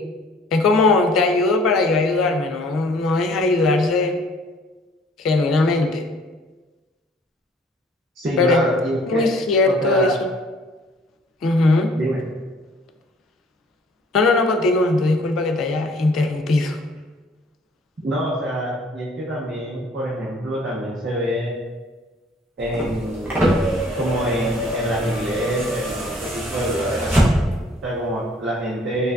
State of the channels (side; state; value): both; normal; correlation 0.57